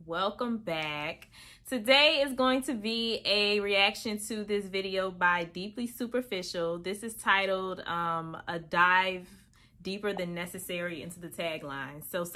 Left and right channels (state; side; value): identical; both; correlation 1.00